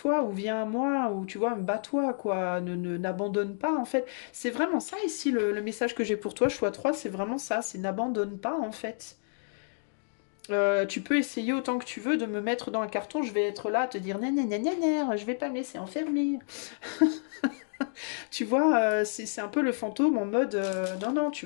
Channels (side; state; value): right; silent; digital silence